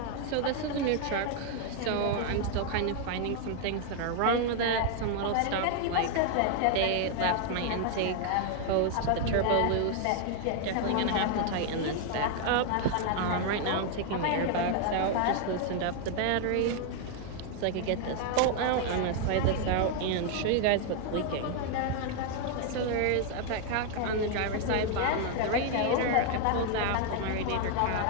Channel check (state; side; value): different; both; correlation 0.00